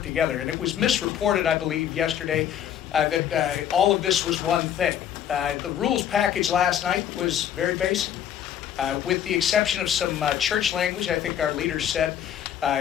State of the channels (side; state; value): right; quieter; 9.9 dB